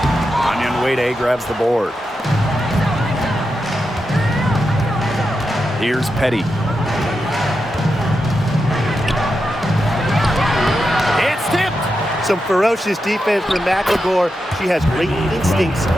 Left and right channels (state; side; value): normal; both; correlation 0.88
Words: Anyan Wade grabs the board. Here's Petty. It's tipped. Some ferocious defense from Magdegor. She has great instincts